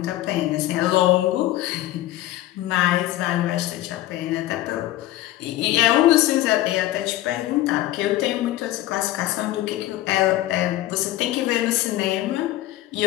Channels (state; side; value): quieter; right; 15.3 dB